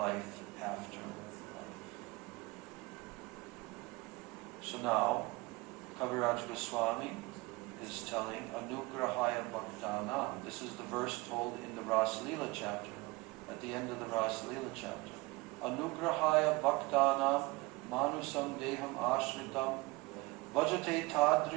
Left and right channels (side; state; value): left; quieter; 23.7 dB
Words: after life. So now, Kaviraj Goswami is telling Anugrahaya Bhaktana. This is the verse told in the Ras Leela chapter, at the end of the Ras Leela chapter. Anugrahaya Bhaktana Manusam Deham Ashritam Vajate